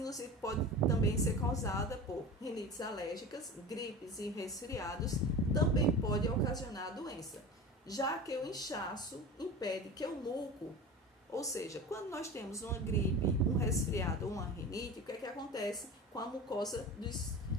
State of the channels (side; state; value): both; normal; correlation 0.33